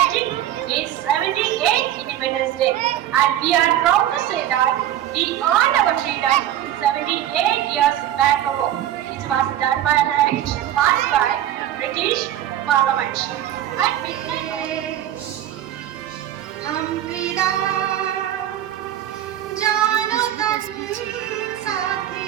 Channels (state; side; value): quieter; left; 12.1 dB